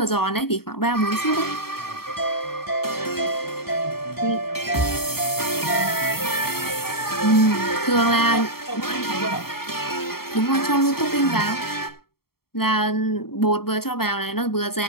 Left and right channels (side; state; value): right; late; 0.94 ms